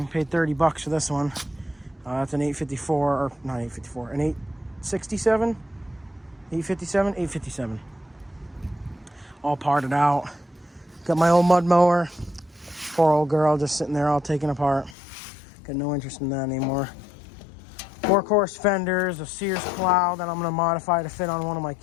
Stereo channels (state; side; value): drops out; right; at 15.0 s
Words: Paid $30 for this one. It's an 854, or not 854, an 867? 857? 857. All parted out. Got my old mud mower. Poor old girl just sitting there all taken apart. Got no interest in that anymore. Workhorse fenders, a Sears plow that I'm going to modify to fit on one of my